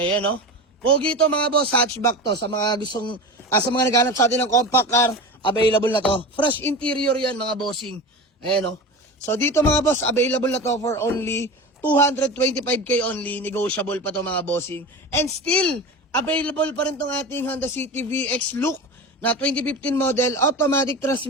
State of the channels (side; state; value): both; normal; correlation 0.28